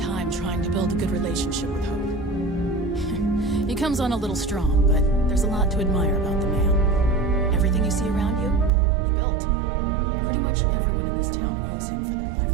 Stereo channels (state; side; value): drops out; left; at 8.7 s